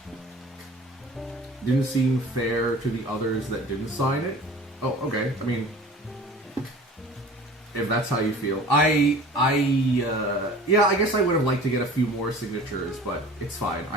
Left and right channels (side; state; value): both; normal; correlation 0.43